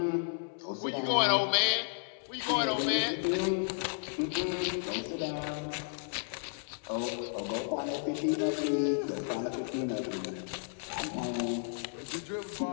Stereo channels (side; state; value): right; silent; 56 dB below the other